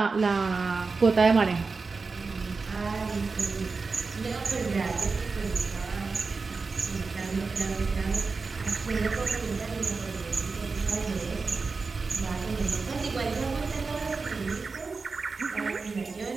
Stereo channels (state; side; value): quieter; left; 4.3 dB